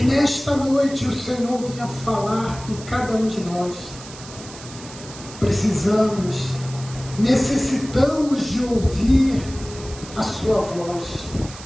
nesta noite o Senhor venha falar com cada um de nós. Precisamos, necessitamos de ouvir a sua voz.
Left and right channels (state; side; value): noise; right; hiss, 16 dB below the sound